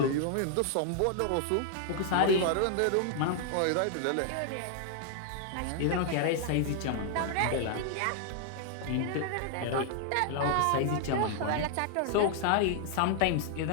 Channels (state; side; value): different; both; correlation 0.00